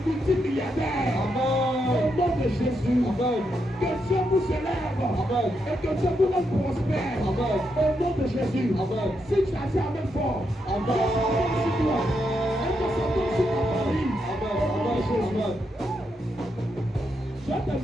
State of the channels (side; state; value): both; normal; correlation 0.82